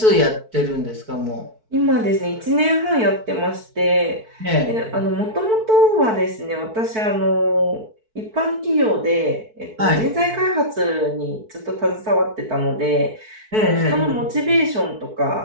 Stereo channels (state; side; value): late; left; 4.6 ms